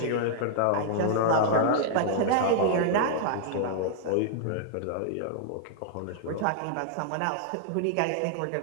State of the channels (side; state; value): both; different; correlation -0.01